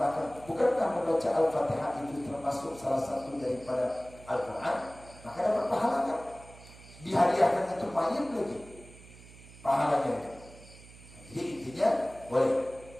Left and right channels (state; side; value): noise; right; hum, 20 dB below the sound